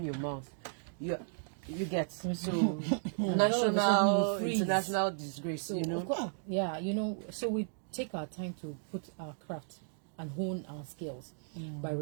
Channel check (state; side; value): silent; left; digital silence